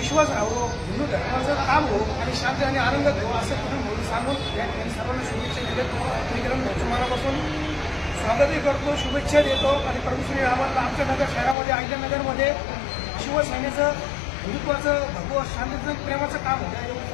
राहावं, हिंदू धर्माचं काम हो आणि शांती आणि आनंद हो असं किरण भाऊ सांगून या ठिकाणी सर्वांना शुभेच्छा देतो। मी किरण भाऊचं मनापासून स्वागतही करतो, शुभेच्छा देतो आणि प्रभू श्री रामांना आमच्या नगर शहरामध्ये, अहिल्यानगरमध्ये शिवसेनेचं हिंदुत्वाचं, भगवत शांतीचं, प्रेमाचं काम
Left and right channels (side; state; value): right; drops out; at 11.6 s